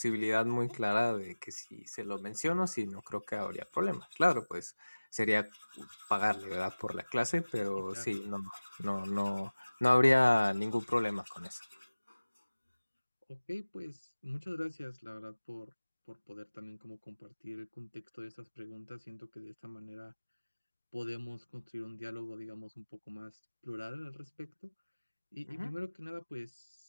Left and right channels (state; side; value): inverted; both; correlation -1.00